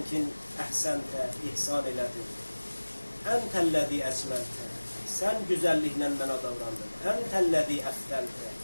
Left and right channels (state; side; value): inverted; both; correlation -1.00